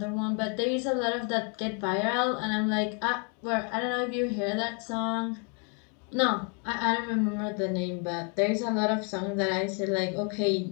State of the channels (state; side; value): quieter; right; 37.9 dB